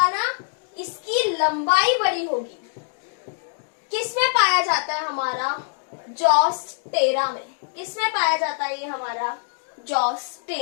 ना, इसकी लंबाई बड़ी होगी, किस में पाया जाता है? हमारा जोस्टेरा में। किस में पाया जाता है ये? हमारा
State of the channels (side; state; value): right; silent; digital silence